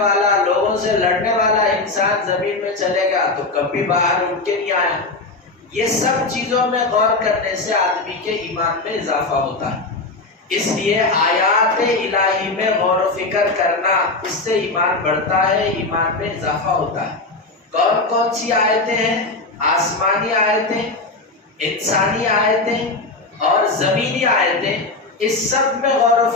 لوگوں سے لڑنے والا انسان زمین میں چلے گیا تو کبھی باہر اٹھ کے نہیں آیا۔ یہ سب چیزوں میں غور کرنے سے آدمی کے ایمان میں اضافہ ہوتا ہے۔ اس لیے آیات الہی میں غور و فکر کرنا، اس سے ایمان بڑھتا ہے، ایمان میں اضافہ ہوتا ہے۔ کون کون سی آیتیں ہیں؟ آسمانی آیتیں، انسانی آیتیں اور زمینی آیتیں، اس سب میں غور و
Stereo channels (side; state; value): right; quieter; 3.3 dB